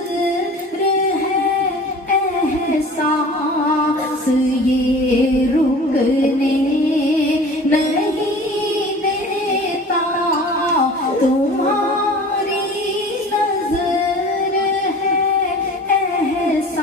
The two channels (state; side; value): normal; both; correlation 0.42